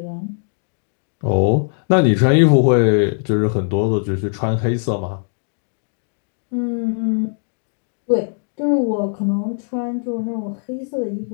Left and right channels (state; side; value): silent; right; digital silence